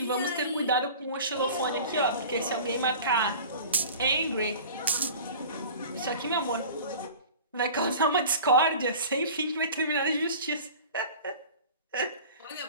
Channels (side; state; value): both; inverted; correlation -0.40